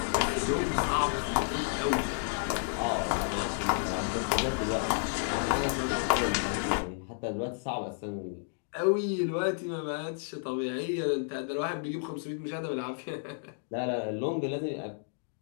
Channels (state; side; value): silent; right; digital silence